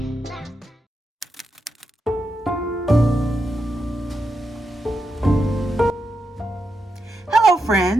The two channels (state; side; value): normal; both; correlation 0.85